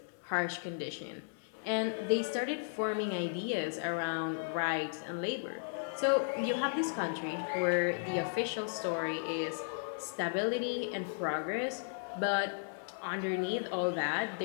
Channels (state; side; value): silent; right; 54 dB below the other